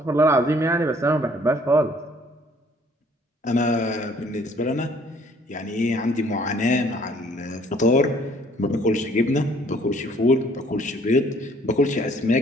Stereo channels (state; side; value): normal; both; correlation 0.59